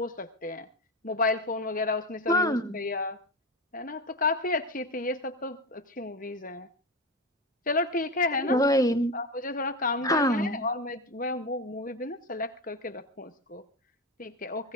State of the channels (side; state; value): both; normal; correlation 0.19